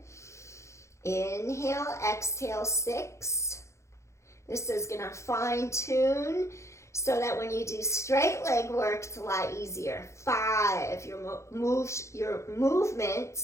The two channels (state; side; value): late; right; 0.14 ms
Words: Inhale, exhale. 6. This is going to fine tune so that when you do straight leg work, it's a lot easier. 5. Your